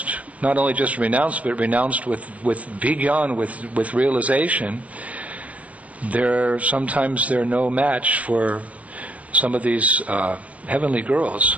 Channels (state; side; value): late; left; 0.067 ms